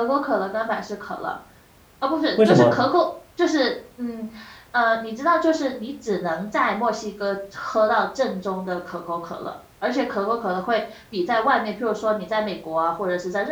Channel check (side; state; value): both; identical; correlation 1.00